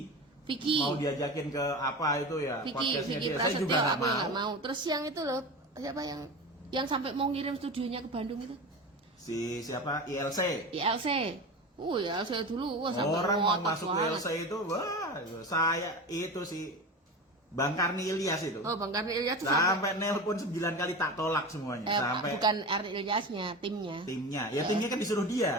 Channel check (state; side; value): normal; both; correlation 0.28